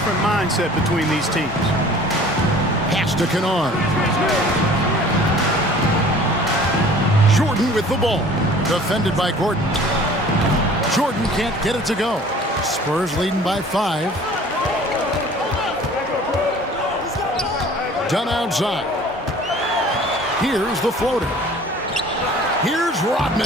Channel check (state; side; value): normal; both; correlation 0.48